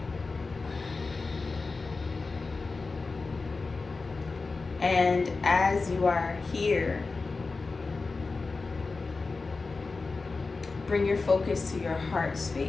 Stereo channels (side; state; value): right; quieter; 4.0 dB